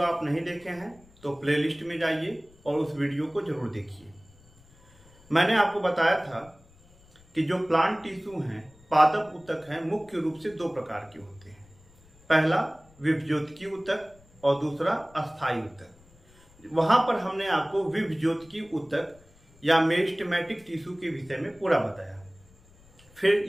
आप नहीं देखे हैं तो प्लेलिस्ट में जाइए और उस वीडियो को जरूर देखिए। मैंने आपको बताया था कि जो प्लांट टिश्यू हैं, पादप ऊतक हैं, मुख्य रूप से दो प्रकार के होते हैं। पहला विभज्योतकी ऊतक और दूसरा अस्थायी ऊतक। वहां पर हमने आपको विभज्योतकी ऊतक या मेरिस्टेमेटिक टिश्यू के विषय में पूरा बताया।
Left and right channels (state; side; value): noise; left; rumble, 28 dB below the sound